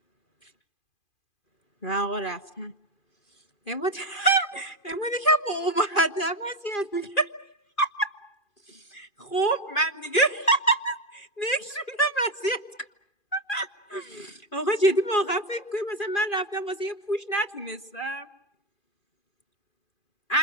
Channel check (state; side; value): late; right; 2.4 ms